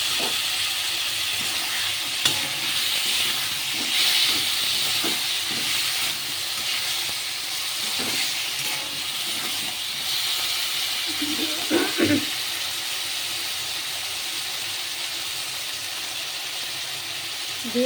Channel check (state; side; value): identical; both; correlation 1.00